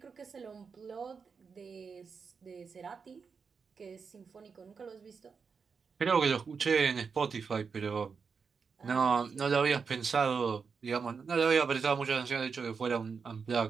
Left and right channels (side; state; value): left; quieter; 5.6 dB